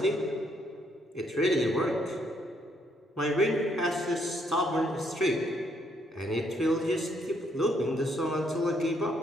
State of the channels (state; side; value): normal; both; correlation 0.71